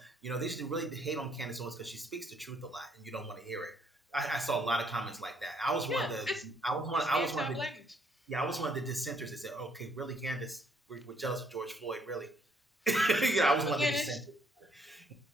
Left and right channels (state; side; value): normal; both; correlation 0.67